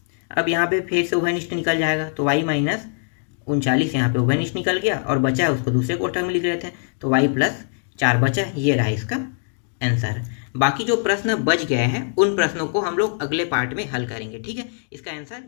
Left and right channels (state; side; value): silent; right; 64 dB below the other